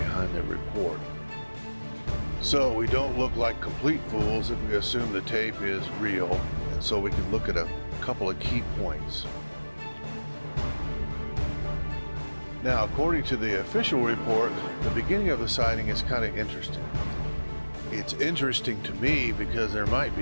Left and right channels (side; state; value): both; inverted; correlation -1.00